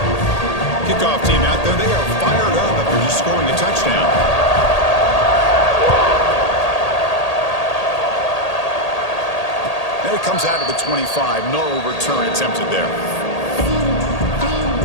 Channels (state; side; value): late; right; 1.8 ms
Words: Kickoff team out there, they are fired up after just scoring a touchdown. And it comes out of the 25. No return attempted there.